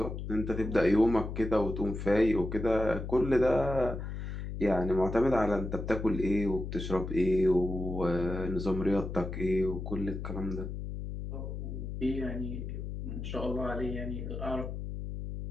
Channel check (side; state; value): left; noise; hum, 6 dB below the sound